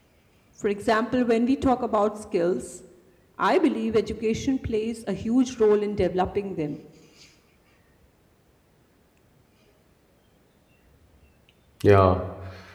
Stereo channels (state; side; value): identical; both; correlation 1.00